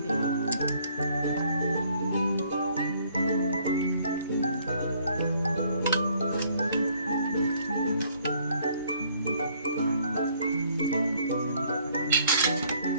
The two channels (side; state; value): both; inverted; correlation -0.63